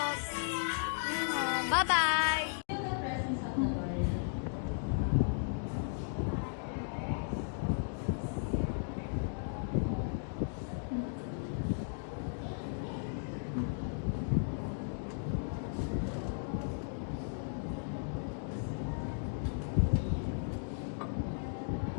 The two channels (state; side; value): silent; right; digital silence